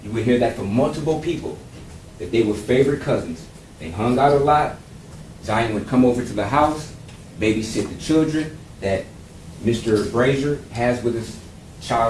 You would hear that from multiple people, that they were favorite cousins. They hung out a lot. Zion would come over to the house, babysit the children that Mr. Brazier has with his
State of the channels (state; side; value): identical; both; correlation 1.00